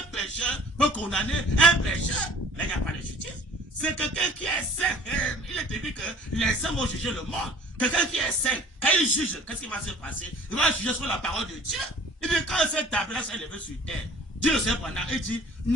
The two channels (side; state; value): both; normal; correlation 0.50